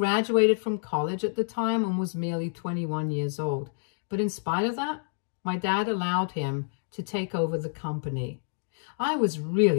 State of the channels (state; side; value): silent; right; digital silence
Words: from college at the time and was merely 21 years old. But in spite of that, my dad allowed him to take over the company. I was